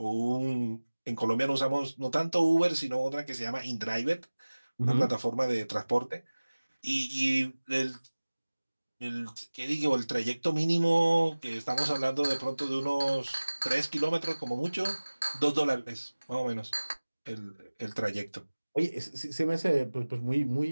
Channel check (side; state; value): both; inverted; correlation -1.00